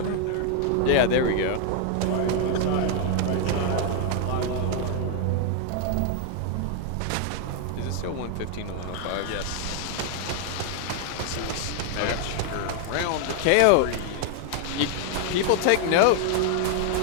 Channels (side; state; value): both; different; correlation 0.00